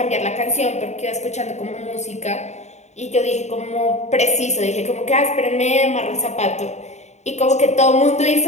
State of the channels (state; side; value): late; right; 0.33 ms